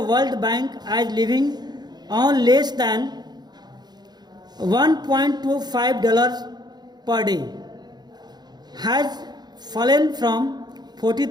world bank as living on less than $1.25 per day has fallen from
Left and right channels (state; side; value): late; left; 0.20 ms